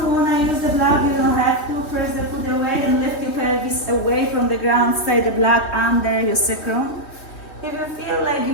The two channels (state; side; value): late; right; 3.2 ms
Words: want to use the block, you don't have to. Press the foot away and lift your pelvis away from the ground. Stay the block under your sacrum. If you feel like